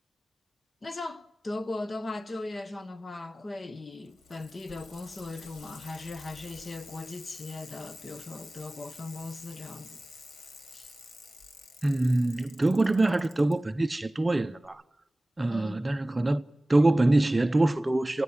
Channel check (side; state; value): both; normal; correlation 0.98